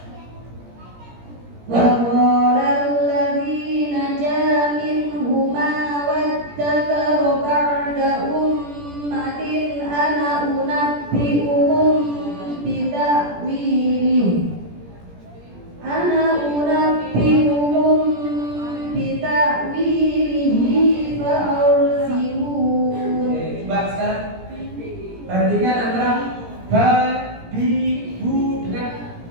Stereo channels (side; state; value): left; late; 17 ms